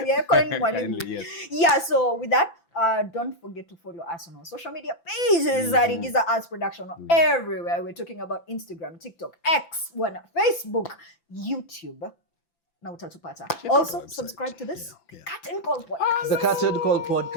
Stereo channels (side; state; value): right; late; 5.9 ms